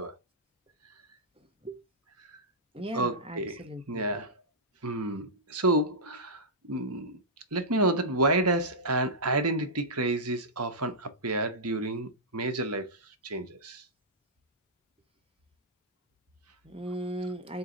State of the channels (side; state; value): both; normal; correlation -0.12